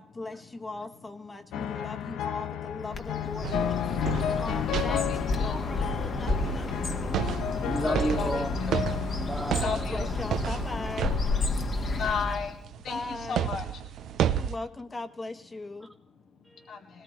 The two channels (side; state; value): both; normal; correlation 0.63